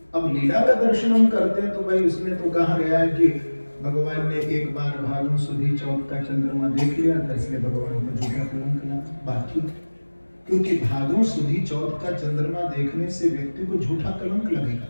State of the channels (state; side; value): inverted; both; correlation -1.00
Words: अब लीला का दर्शन हम करते हैं तो भाई उसमें तो कहा गया है कि भगवान ने एक बार भादों सुधी चौथ का चंद्रमा देख लिया था, इसलिए भगवान को झूठा कलंक लगा। बात ठीक, क्योंकि भादों सुधी चौथ का चंद्रमा देखने से व्यक्ति को झूठा कलंक लगेगा।